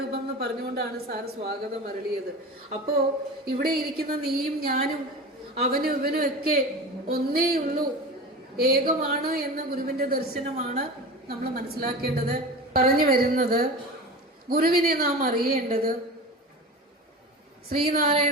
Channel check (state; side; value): normal; both; correlation 0.31